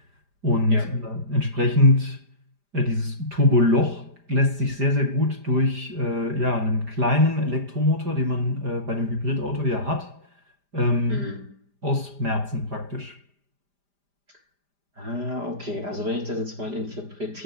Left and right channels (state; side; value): late; left; 5.0 ms